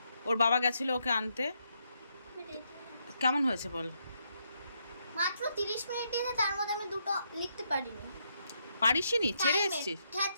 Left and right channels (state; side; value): inverted; both; correlation -0.78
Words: ওর বাবা গেছিলো ওকে আনতে। কেমন হয়েছে বল? মাত্র 30 মিনিট দিয়েছে, তার মধ্যে আমি দুটো লিখতে পারিনি। পারিসনি? ছেড়ে এসেছিস? হ্যাঁ